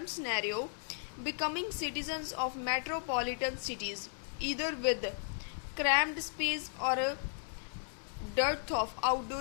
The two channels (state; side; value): silent; right; digital silence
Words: scenario becoming citizens of metropolitan cities either with cramped space or a dearth of